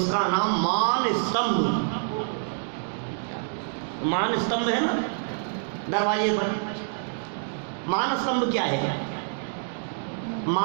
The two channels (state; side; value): silent; left; digital silence